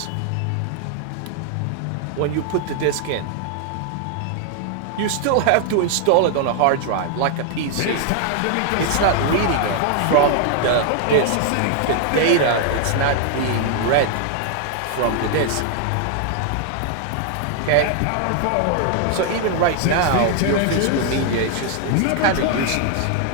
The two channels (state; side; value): different; both; correlation 0.00